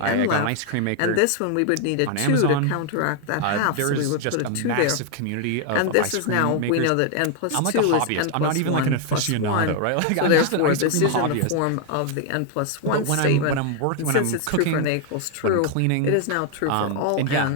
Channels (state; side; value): different; both; correlation 0.00